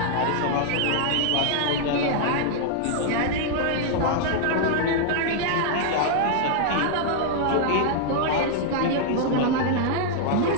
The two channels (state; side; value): different; both; correlation -0.01